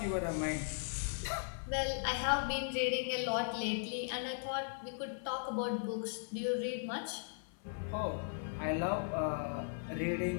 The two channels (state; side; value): silent; right; 52 dB below the other